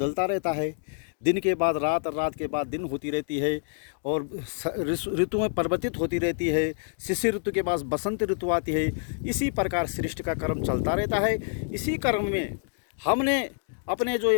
रहता है। दिन के बाद रात और रात के बाद दिन होती रहती है और ऋतुएं परिवर्तित होती रहती है। शिशिर ऋतु के बाद बसंत ऋतु आती है। इसी प्रकार सृष्टि का क्रम चलता रहता है। इसी क्रम में हमने अपने जो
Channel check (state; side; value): silent; right; digital silence